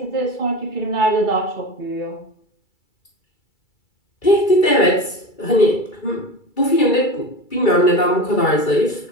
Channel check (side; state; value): right; late; 2.3 ms